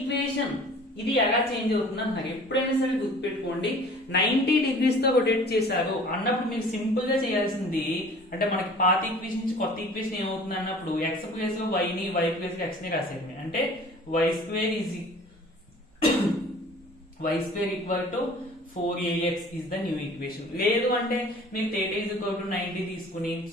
ఇది ఎలా చేంజ్ అవుతుంది అంటున్నారు. ఎప్పుడైనా సరే గుర్తుపెట్టుకోండి, 90 డిగ్రీస్ తో రొటేట్ చేశారు అన్నప్పుడు మీరు సింపుల్ గా చేయాల్సింది, అంటే మనకి పాత ఈక్వేషన్ నుంచి కొత్త ఈక్వేషన్ ఏమవుతుంది అన్నప్పుడు ఎక్స్ ప్లేస్ లో వైని వై ప్లేస్ లో ఎక్స్ ని రాసేది. అంటే y square equal to 4ax is the new equation. లేదు అంటే మీరు థీటా ఈజ్ ఈక్వల్ టు 90 తీసుకుని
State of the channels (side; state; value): both; normal; correlation 0.47